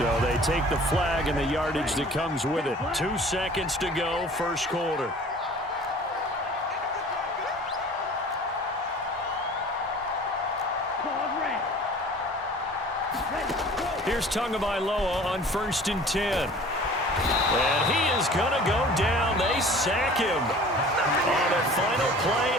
they take the flag and the yardage that comes with it. 2 seconds to go, first quarter. Here's Tagovailoa on first and 10. And he is going to go down. They sack him on the final play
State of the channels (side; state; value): both; normal; correlation 0.46